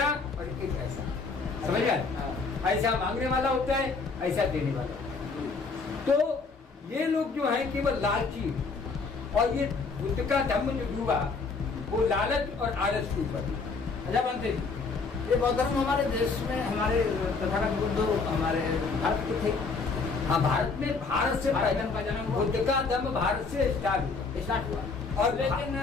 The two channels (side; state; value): right; quieter; 4.4 dB